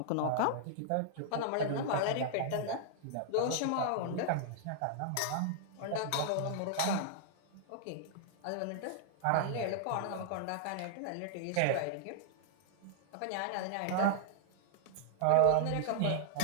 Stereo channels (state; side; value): different; both; correlation -0.01